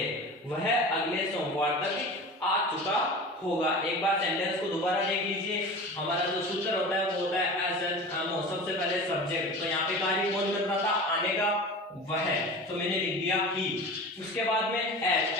वह अगले सोमवार तक आ चुका होगा। एक बार सेंटेंस को दोबारा देख लीजिए। हमारा जो सूत्र होता है वो होता है एस एन एम ओ, सबसे पहले सब्जेक्ट। तो यहाँ पे कार्य कौन कर रहा था, आने का, वह, तो मैंने लिख दिया ही। उसके बाद में एस,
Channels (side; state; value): both; normal; correlation 0.34